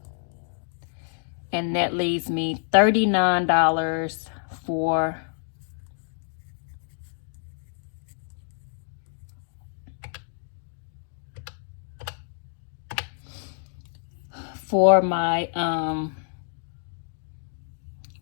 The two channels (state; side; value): silent; right; digital silence